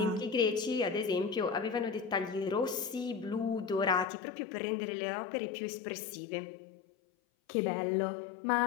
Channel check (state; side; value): drops out; right; at 4.0 s